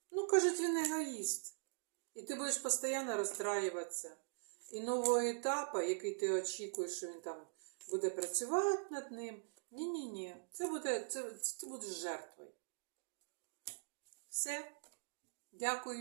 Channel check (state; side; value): silent; left; digital silence